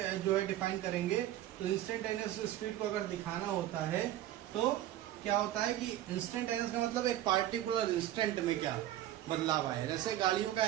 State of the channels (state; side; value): quieter; left; 13.3 dB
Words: जो है डिफाइन करेंगे? तो इंस्टेंटेनियस स्पीड को अगर दिखाना होता है तो क्या होता है कि इंस्टेंटेनियस का मतलब एक पार्टिकुलर इंस्टेंट में क्या बदलाव आए। जैसे गाड़ियों का